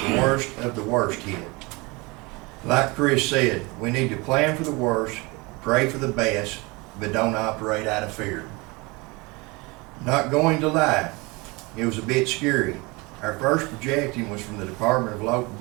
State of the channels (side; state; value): left; quieter; 25.7 dB